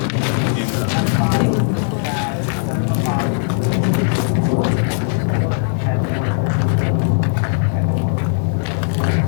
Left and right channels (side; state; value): right; silent; 67 dB below the other